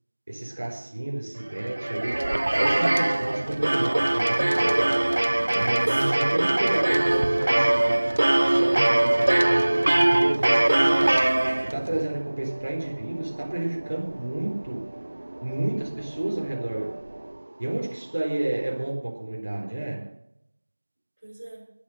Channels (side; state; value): both; inverted; correlation -1.00